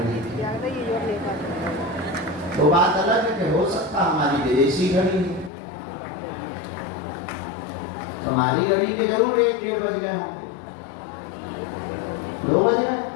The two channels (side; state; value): right; drops out; at 5.5 s